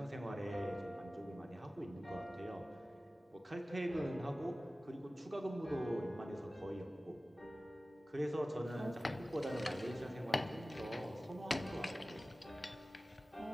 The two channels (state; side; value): normal; both; correlation 0.97